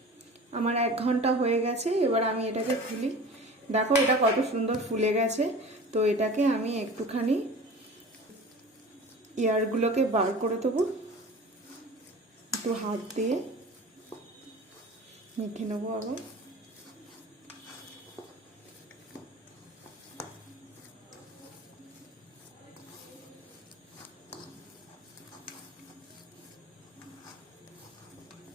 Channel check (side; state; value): both; normal; correlation 0.39